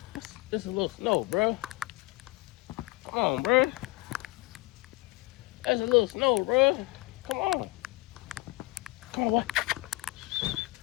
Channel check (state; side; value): quieter; right; 21.4 dB